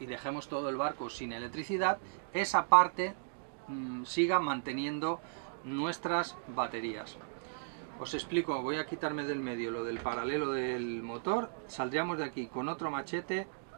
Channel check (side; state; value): left; silent; digital silence